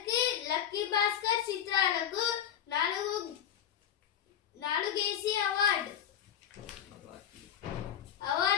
లక్కీ భాస్కర్ చిత్రాలకు 4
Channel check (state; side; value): quieter; right; 9.7 dB